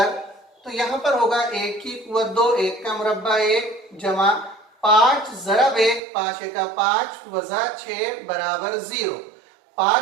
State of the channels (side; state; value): left; drops out; at 6.0 s